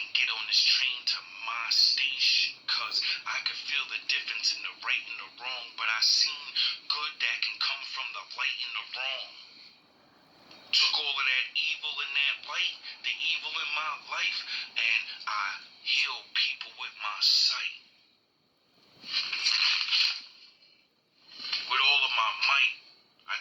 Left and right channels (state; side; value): identical; both; correlation 1.00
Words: get on this train to my station. Cause I could feel the difference in the right and the wrong. But I seen good that can come from the light and the wrong. Took all of that evil and that light, the evil in my life, and I healed people with my sight. With all of my might, I